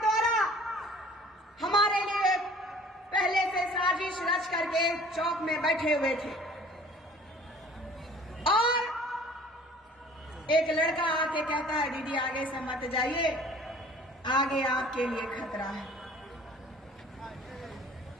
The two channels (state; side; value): normal; both; correlation 0.50